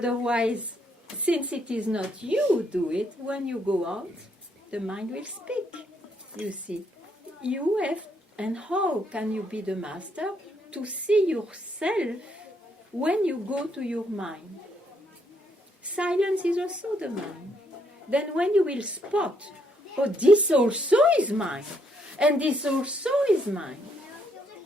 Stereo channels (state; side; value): normal; both; correlation 0.73